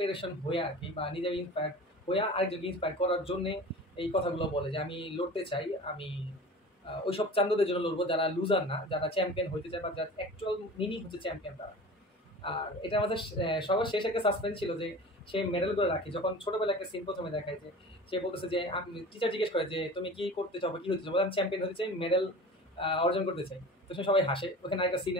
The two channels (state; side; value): normal; both; correlation 0.37